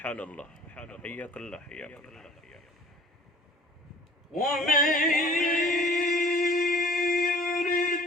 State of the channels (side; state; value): both; normal; correlation 0.49